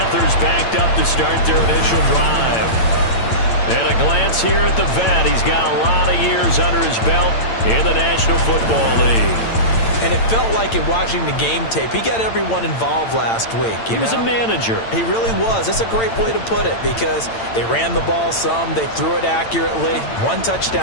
backed up to start their initial drive. And a glance here at the vet. He's got a lot of years under his belt in the National Football League. And it felt like in watching the game tape, he got everyone involved last week. He was a manager. He really was. That's a great way to put it, because they ran the ball some, they threw it accurately. One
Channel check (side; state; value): right; late; 8.9 ms